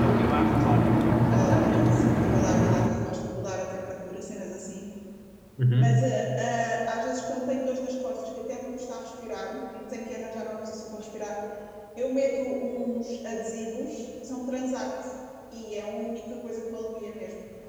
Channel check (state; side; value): identical; both; correlation 1.00